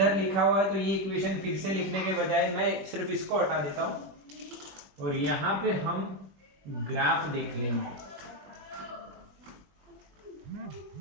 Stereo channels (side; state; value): left; late; 21 ms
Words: लिखा हुआ है, तो ये इक्वेशन फिर से लिखने के बजाय मैं सिर्फ इसको हटा देता हूं और यहाँ पे हम ग्राफ देख लेंगे।